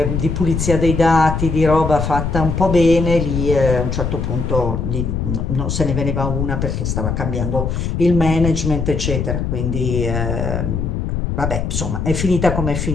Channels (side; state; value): left; noise; rumble, 2 dB below the sound